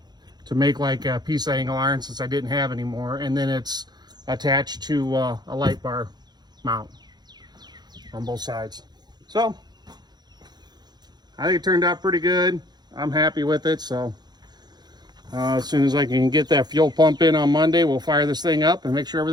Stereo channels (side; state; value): left; late; 0.20 ms